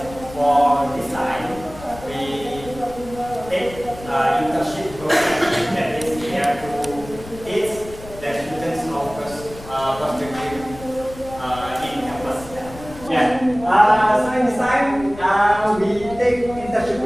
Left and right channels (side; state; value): left; noise; rumble, 16 dB below the sound